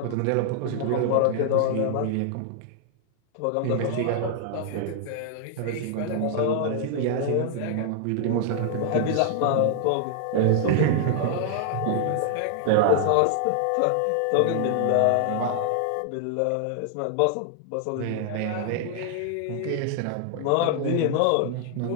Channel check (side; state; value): both; different; correlation -0.01